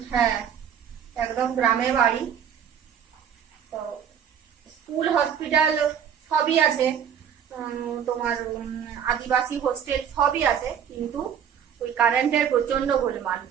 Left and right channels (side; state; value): left; quieter; 8.4 dB